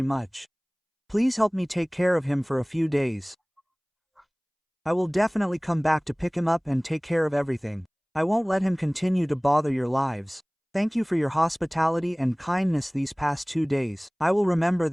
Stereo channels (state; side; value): identical; both; correlation 1.00